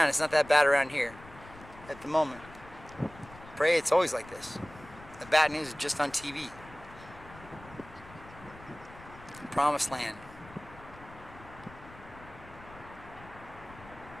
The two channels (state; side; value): noise; left; rumble, 19 dB below the sound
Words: it's not that bad around here at the moment. Pray it's always like this. The bad news is just on TV. Promised land.